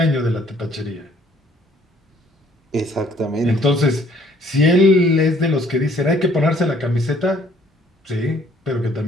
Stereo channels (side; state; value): both; normal; correlation 0.60